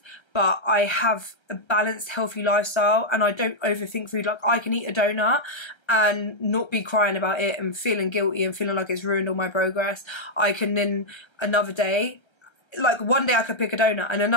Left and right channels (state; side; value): late; right; 1.3 ms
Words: but I have a balanced, healthy lifestyle, and I don't overthink food. Like I can eat a donut and not be crying about it and feeling guilty and feeling like it's ruined all my progress. I can then another day, like one day I could pick a donut and